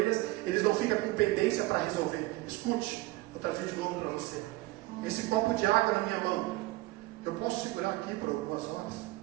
eles não ficam com pendência para resolver. Escute, vou trazer de novo para você. Esse copo de água na minha mão, eu posso segurar aqui por algumas horas,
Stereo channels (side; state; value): left; quieter; 19.9 dB